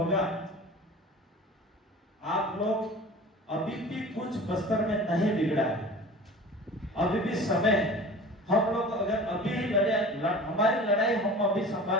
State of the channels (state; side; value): normal; both; correlation 0.39